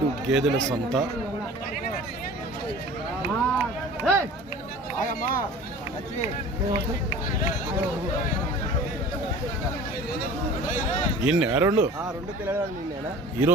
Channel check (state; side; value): normal; both; correlation 0.42